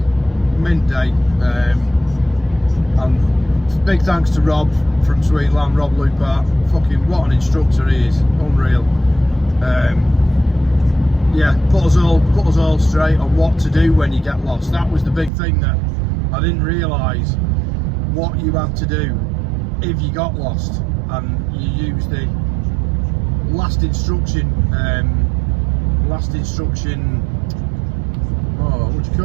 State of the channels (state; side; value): drops out; left; at 15.3 s